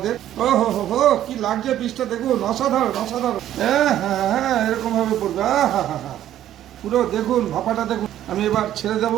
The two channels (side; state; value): left; quieter; 12.0 dB